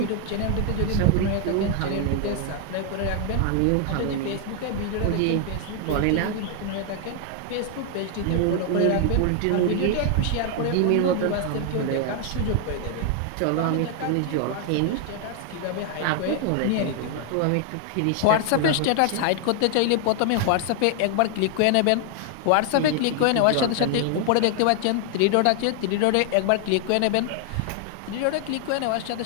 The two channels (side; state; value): both; different; correlation 0.00